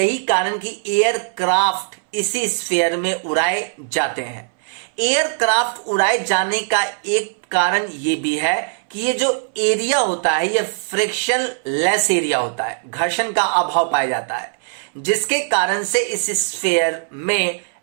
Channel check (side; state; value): left; silent; 63 dB below the other